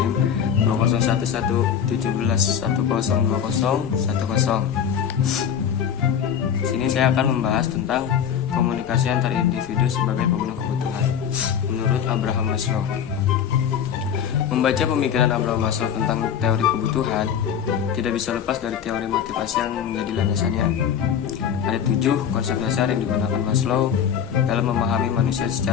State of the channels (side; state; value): right; quieter; 8.3 dB